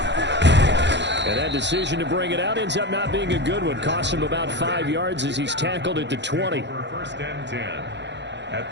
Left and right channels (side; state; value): left; late; 0.52 ms